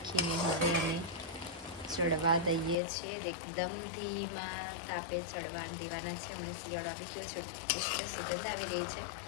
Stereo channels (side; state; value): right; drops out; at 2.8 s